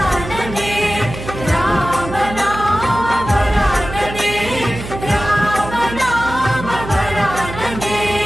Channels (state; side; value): noise; right; hum, 10 dB below the sound